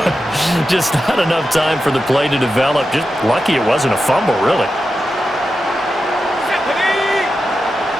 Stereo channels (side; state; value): both; normal; correlation 0.90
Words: Just not enough time for the play to develop. Just lucky it wasn't a fumble, really.